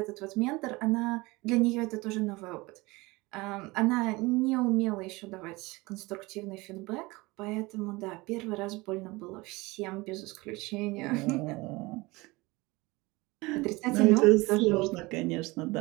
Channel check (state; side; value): quieter; left; 22.8 dB